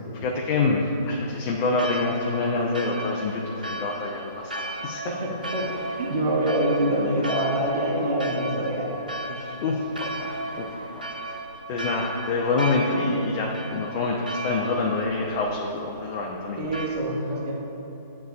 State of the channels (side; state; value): both; inverted; correlation -0.38